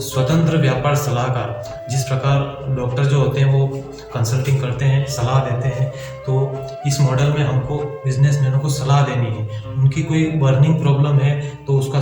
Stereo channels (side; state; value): both; identical; correlation 1.00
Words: स्वतंत्र व्यापार सलाहकार। जिस प्रकार डॉक्टर जो होते हैं वो कंसल्टिंग करते हैं, सलाह देते हैं, तो इस मॉडल में हमको बिजनेसमैनों को सलाह देनी है। उनकी कोई बर्निंग प्रॉब्लम है तो उसका